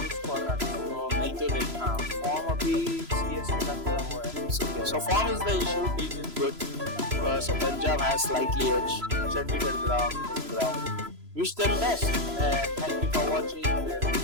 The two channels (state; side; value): late; left; 3.0 ms